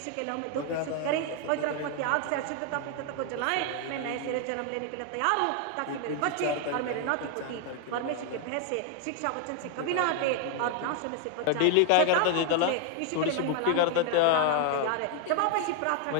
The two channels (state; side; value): different; both; correlation 0.00